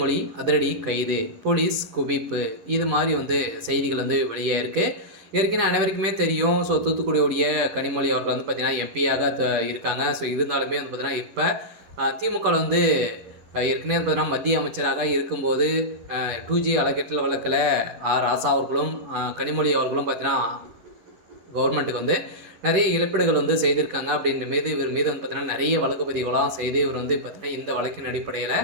அதிரடி கைது, போலீஸ் குவிப்பு, இது மாதிரி செய்திகள் வெளியாயிருக்கு. ஏற்கனவே அனைவருக்குமே தெரியும். தூத்துக்குடியுடைய கனிமொழி அவர்கள் பார்த்தீங்கன்னா எம்பியாக இருக்காங்க. இருந்தாலுமே பார்த்தீங்கன்னா இப்போ திமுக ஏற்கனவே பார்த்தீங்கன்னா மத்திய அமைச்சராக இருக்கும்போது 2G அறக்கட்டளை வழக்கில் ராசா அவர்களும் கனிமொழி அவர்களும் பார்த்தீங்கன்னா கவர்மெண்ட்டுக்கு நிறைய இழப்பீடுகள் செய்திருக்காங்க. அப்படின்ற மீது இவர் மீது பார்த்தீங்கன்னா நிறைய வழக்கு பதிவுகளாம் செய்து இவர் பார்த்தீங்கன்னா இந்த வழக்கின் அடிப்படையில்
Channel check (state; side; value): late; left; 10 ms